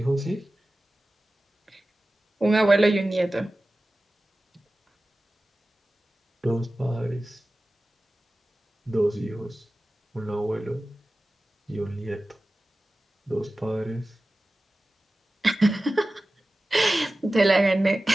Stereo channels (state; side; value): normal; both; correlation 0.96